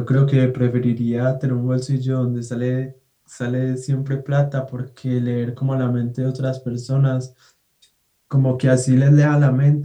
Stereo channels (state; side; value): identical; both; correlation 1.00